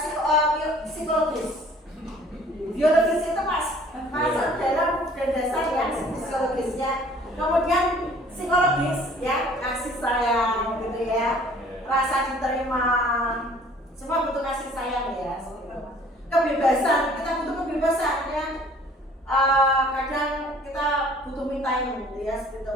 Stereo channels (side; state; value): both; normal; correlation 0.53